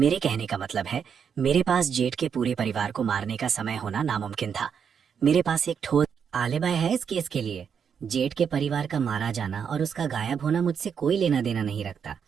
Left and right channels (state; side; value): quieter; left; 7.2 dB